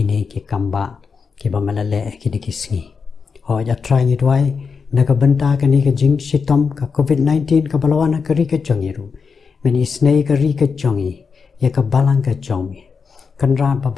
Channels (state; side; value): quieter; right; 5.5 dB